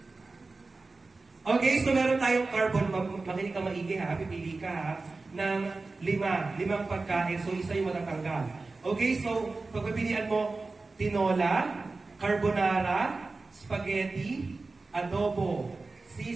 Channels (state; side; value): quieter; left; 3.6 dB